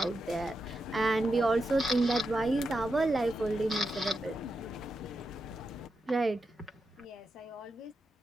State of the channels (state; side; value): normal; both; correlation 0.87